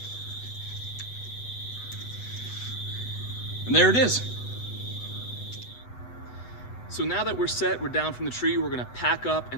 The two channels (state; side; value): late; right; 8.1 ms